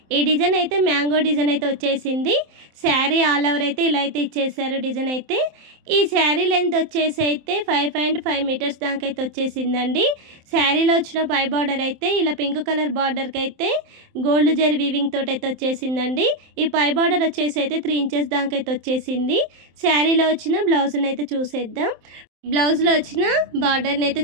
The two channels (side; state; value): left; late; 27 ms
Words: ఈ డిజైన్ అయితే మ్యాంగో డిజైన్ అయితే వచ్చేసింది. శారీ ఆల్ ఓవర్ అయితే ఇలా అయితే ఇచ్చేసారు డిజైన్ అయితే. ఈ శారీ లెంత్ వచ్చేసి అయితే 5.5 మీటర్స్ దాకా అయితే వచ్చేసిందండి. శారీలో వచ్చిన పై బార్డర్ అయితే ఇలా పింక్ కలర్ బార్డర్కి అయితే గోల్డ్ జరీ వీవింగ్ తోటి అయితే వచ్చేసిందండి. ఈ పై బార్డర్ వచ్చేసి అయితే 3 ఇంచెస్ దాకా అయితే వచ్చేసింది. శారీలో వచ్చిన బ్లౌజ్ని అయితే చూసేద్దాం. బ్లౌజ్లో వచ్చిన బార్డర్ని అయితే